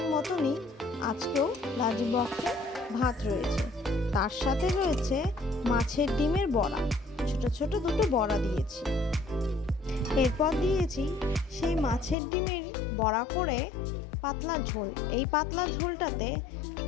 মতনই আজকেও লাঞ্চ বক্সে ভাত রয়েছে। তার সাথে রয়েছে মাছের ডিমের বড়া, ছোট ছোট দুটো বড়া দিয়েছি। এরপর দিয়েছি সেই মাছের ডিমের বড়া করে পাতলা ঝোল। এই পাতলা ঝোলটাতে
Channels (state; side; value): drops out; right; at 12.2 s